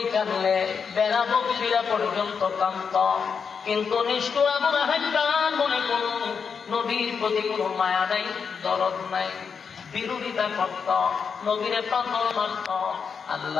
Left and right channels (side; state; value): right; quieter; 6.1 dB